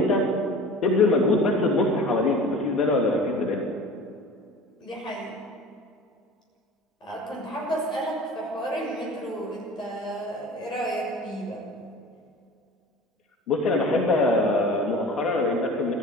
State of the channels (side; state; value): both; normal; correlation 0.40